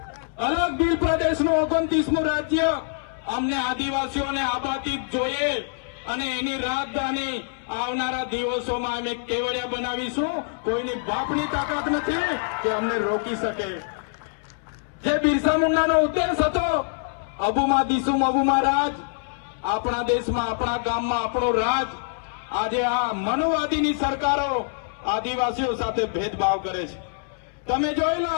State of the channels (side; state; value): right; silent; 62 dB below the other